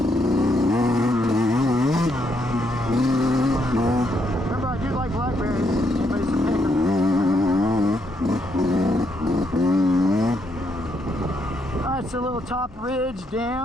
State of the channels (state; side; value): normal; both; correlation 0.76